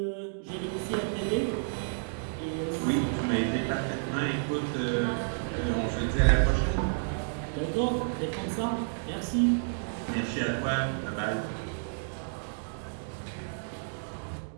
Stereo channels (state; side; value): silent; left; digital silence